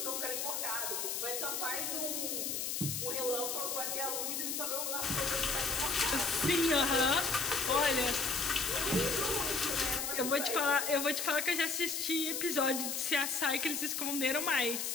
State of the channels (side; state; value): left; noise; hiss, 2 dB below the sound